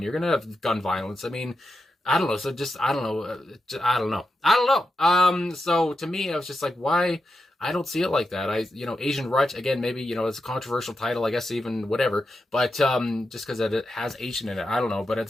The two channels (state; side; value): normal; both; correlation 0.88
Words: You're going to have gun violence. I mean, I don't know. So just, I don't know. So to me, I was just like, why? I don't see it like that. Asian Rut, again, maybe, it's a controversial title, I guess, even whatever, but, just cause it has Asian in it, I don't know. But at